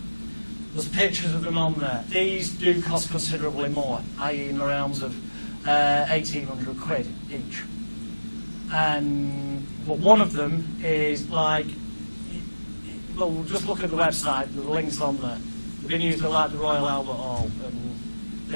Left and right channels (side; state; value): both; inverted; correlation -1.00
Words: There's pictures of them on there. These do cost considerably more, i.e. in the realms of 1,800 quid each. But one of them is like, well, just look at the website, the links on there. They've been used at like the Royal Albert Hall, and